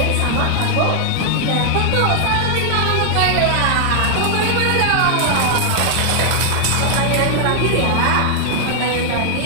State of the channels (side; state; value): both; different; correlation 0.00